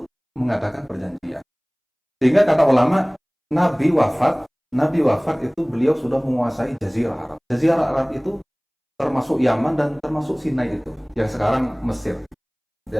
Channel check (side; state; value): both; identical; correlation 1.00